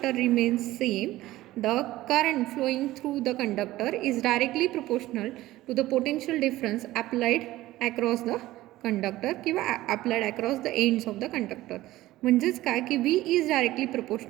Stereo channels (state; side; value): quieter; left; 16.4 dB